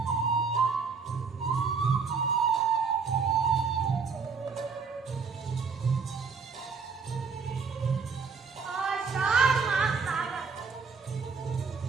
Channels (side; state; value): left; quieter; 5.2 dB